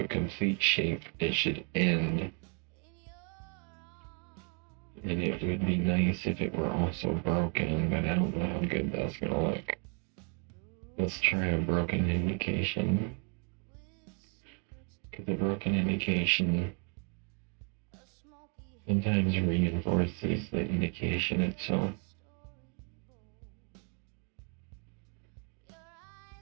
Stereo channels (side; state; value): left; quieter; 38.2 dB